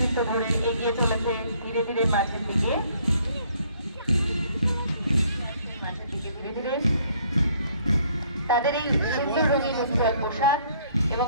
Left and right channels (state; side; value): inverted; both; correlation -0.63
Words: ধরে এগিয়ে চলেছে ধীরে ধীরে মাঠের দিকে ধীরে ধীরে তাদের এই সুন্দর রঙিন উজ্জ্বল পোশাক এবং